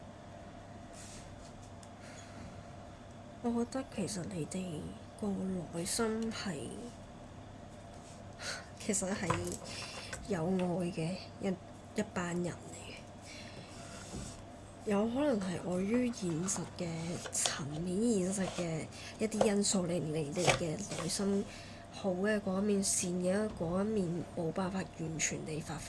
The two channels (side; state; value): both; identical; correlation 1.00